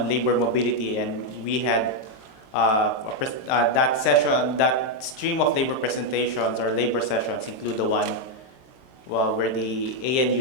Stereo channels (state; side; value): late; right; 23 ms